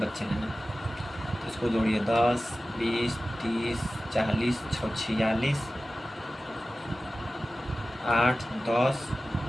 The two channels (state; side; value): normal; both; correlation 0.95